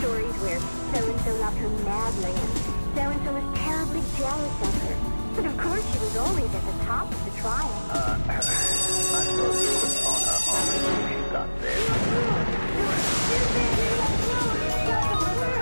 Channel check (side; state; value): both; inverted; correlation -1.00